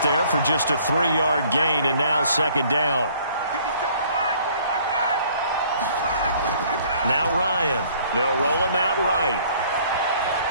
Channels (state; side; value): inverted; both; correlation -0.58